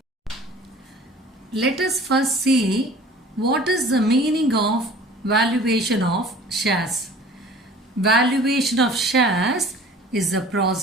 Let us first see what is the meaning of valuation of shares. Valuation of shares is the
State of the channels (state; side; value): normal; both; correlation 0.46